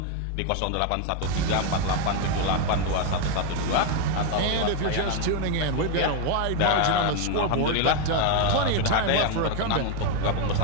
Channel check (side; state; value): both; different; correlation 0.01